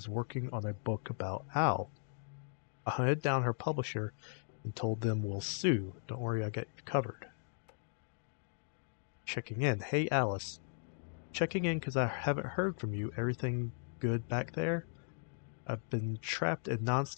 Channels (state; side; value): silent; right; digital silence